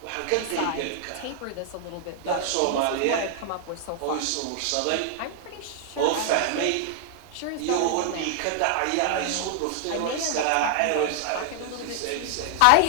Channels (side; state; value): both; different; correlation -0.01